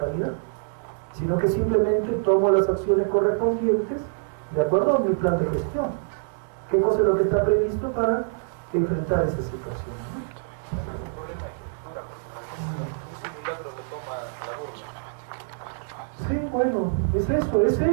sino que simplemente tomo las acciones correspondientes de acuerdo a mi plan de gestión. ¿Qué cosa es lo que está previsto para enfrentar esa situación? Un problema de estructura, porque un simulacro lo toma la burla. Sí, bueno, es eso,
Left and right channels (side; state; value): left; silent; 61 dB below the other